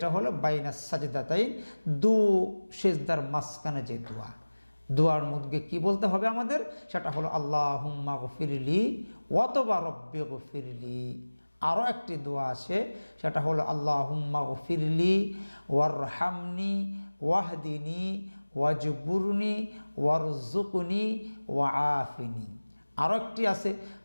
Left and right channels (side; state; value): both; inverted; correlation -1.00